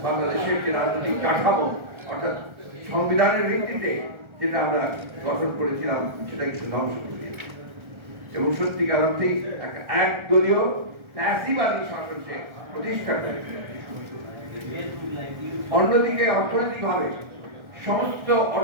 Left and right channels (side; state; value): left; late; 1.3 ms